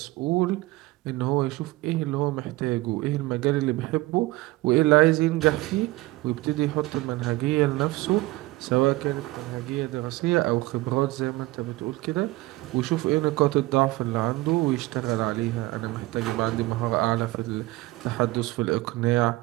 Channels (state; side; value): quieter; left; 19.8 dB